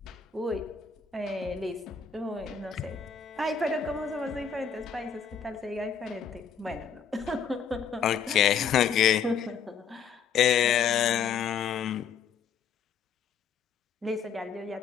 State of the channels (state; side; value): quieter; right; 7.0 dB